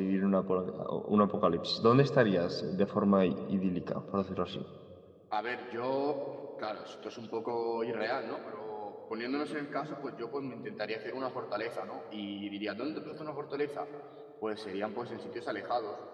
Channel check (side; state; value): both; identical; correlation 1.00